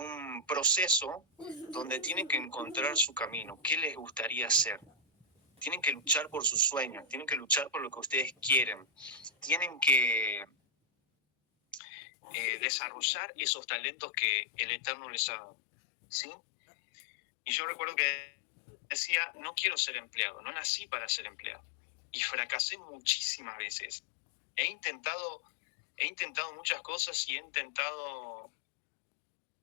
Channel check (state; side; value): drops out; right; at 11.8 s